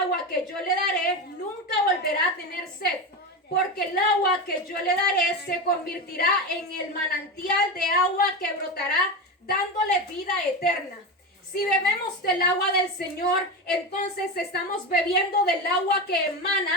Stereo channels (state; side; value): normal; both; correlation 0.19